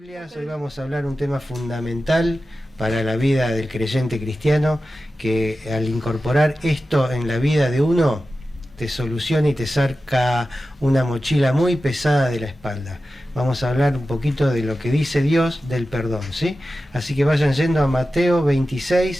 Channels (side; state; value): both; normal; correlation 0.93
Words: Hoy vamos a hablar un tema fundamental para la vida del creyente cristiano, que al incorporar esto en la vida de uno, te soluciona y te saca una mochila muy pesada de la espalda. Vamos a hablar un poquito de lo que dice Dios del perdón, ¿sí? Así que vayan yendo a Mateo